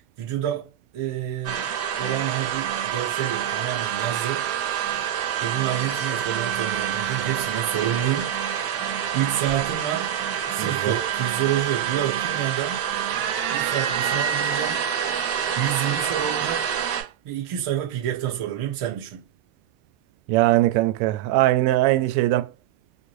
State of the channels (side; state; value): left; quieter; 10.7 dB